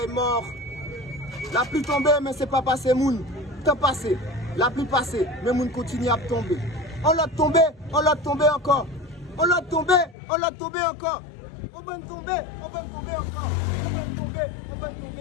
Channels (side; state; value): right; drops out; at 10.2 s